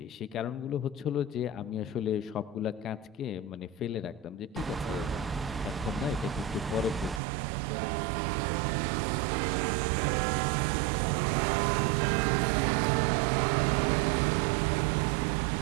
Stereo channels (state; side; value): drops out; left; at 7.2 s